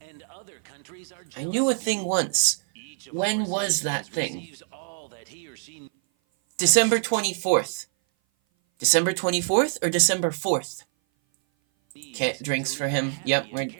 and other countries are I jealous knew a of thing you. once. Each of When our was that citizens thing? receives all that he or she December 24th. December 24th or December 4th? needs Okay, to drinks live for a him. happy Yep, and we're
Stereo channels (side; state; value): left; silent; 57 dB below the other